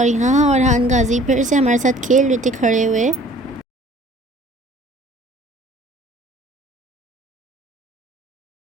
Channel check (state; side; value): normal; both; correlation 0.52